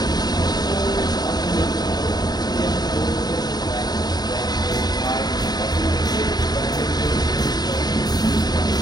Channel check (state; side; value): late; right; 0.20 ms